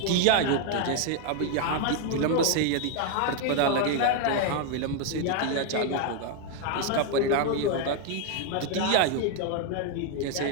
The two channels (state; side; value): different; both; correlation 0.00